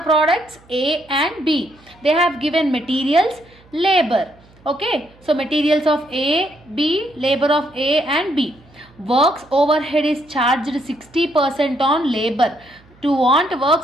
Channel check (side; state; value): right; noise; hum, 28 dB below the sound